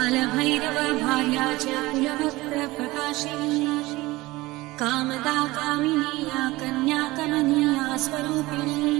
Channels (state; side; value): quieter; left; 19.9 dB